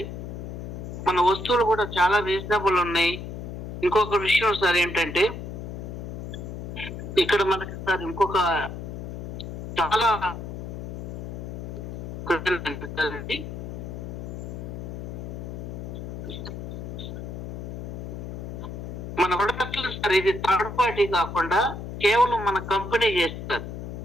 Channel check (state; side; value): noise; left; hum, 7 dB below the sound